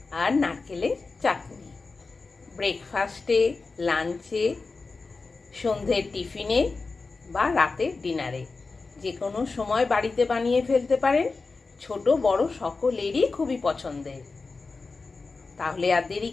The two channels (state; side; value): quieter; right; 4.0 dB